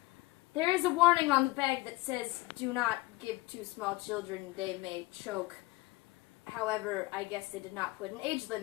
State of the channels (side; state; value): right; quieter; 21.9 dB